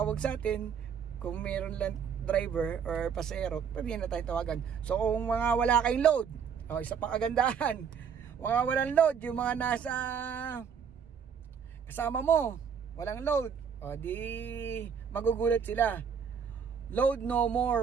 sa atin. Kung meron lang driver or pasero, pwede na tayo tawagan. So kung mga wala kayong load, isa pang kagandahan, mga walang load, yung mga nasa kasama mo, walang load, di magugulat sila. Load no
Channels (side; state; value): left; quieter; 7.1 dB